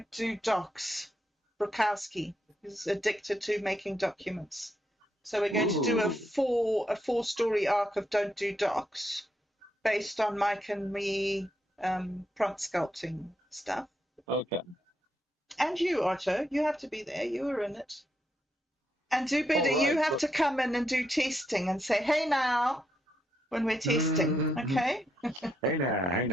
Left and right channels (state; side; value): normal; both; correlation 0.80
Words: Do Docs. Brokowski is addicted to making documents. So we're going to do a four story arc of Don't Do Docs based on Mike and me prompt sculpting stuff. Okay. And you, Otto, you have to be there. You were in it. And DooBetter, you have to come in and do testing and say, "Hey now," when we're testing, okay? Hey